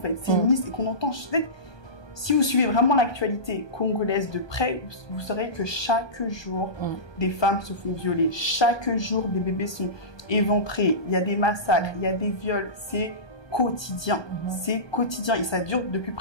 c'est une liste et qu'on entend. Si vous suivez vraiment l'actualité congolaise de près, vous saurez que chaque jour, des femmes se font violer, chaque jour, des bébés sont éventrés, il y a des massacres, il y a des viols, c'est quotidien, c'est quotidien et ça dure depuis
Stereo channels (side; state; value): right; late; 1.2 ms